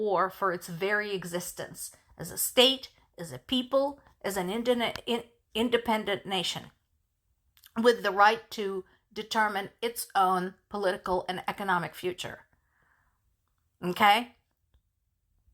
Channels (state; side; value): identical; both; correlation 1.00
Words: for its very existence as a state, as a people, as an independent nation, with the right to determine its own political and economic future. Okay?